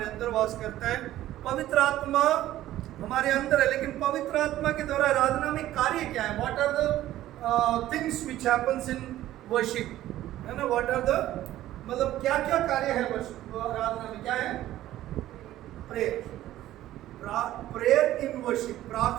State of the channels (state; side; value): quieter; left; 14.1 dB